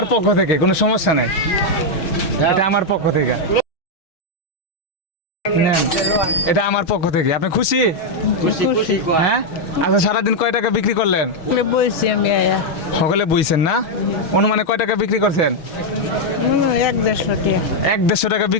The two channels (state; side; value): late; right; 6.3 ms